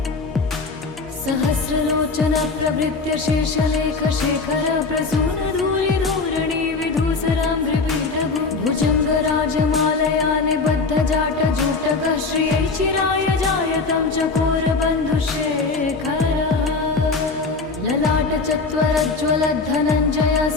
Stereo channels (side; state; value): right; quieter; 4.1 dB